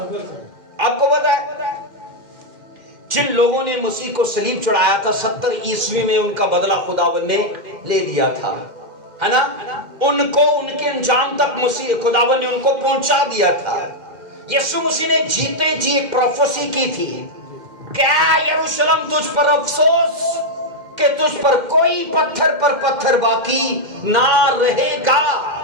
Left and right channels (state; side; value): late; left; 2.1 ms